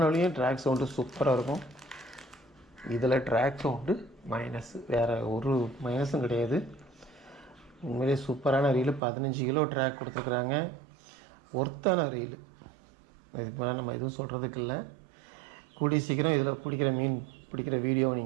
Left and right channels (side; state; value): left; drops out; at 9.0 s